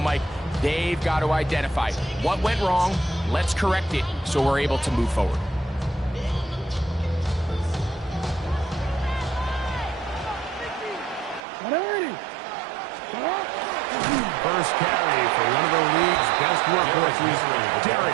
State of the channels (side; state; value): left; drops out; at 11.5 s